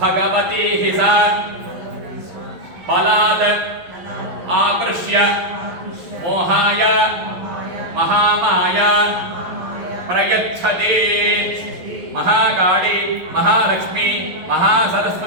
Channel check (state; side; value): late; left; 11 ms